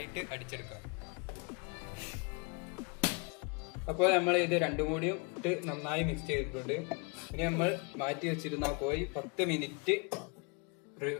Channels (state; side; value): quieter; right; 33.7 dB